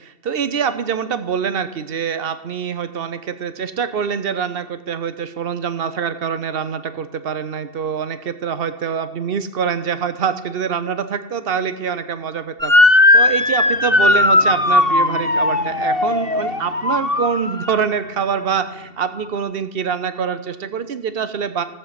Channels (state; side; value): late; left; 2.7 ms